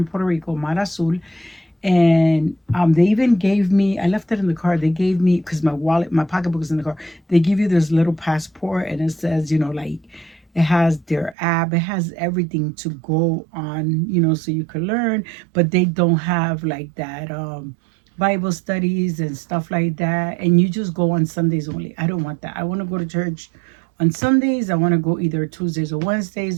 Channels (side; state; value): left; drops out; at 11.4 s